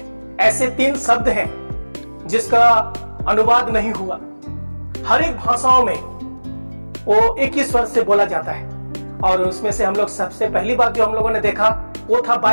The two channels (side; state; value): both; inverted; correlation -1.00